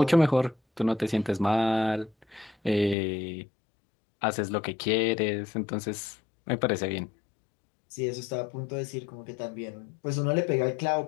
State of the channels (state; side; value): drops out; right; at 3.0 s